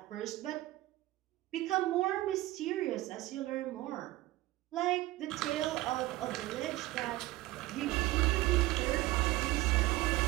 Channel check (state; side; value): quieter; left; 17.7 dB